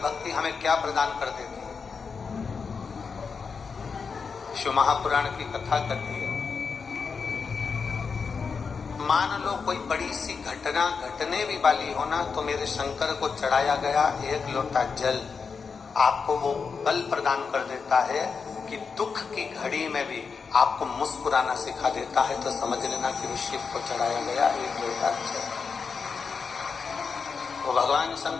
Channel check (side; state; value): right; quieter; 5.4 dB